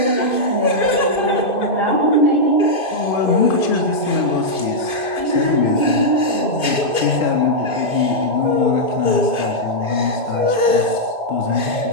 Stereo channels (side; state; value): right; late; 2.5 ms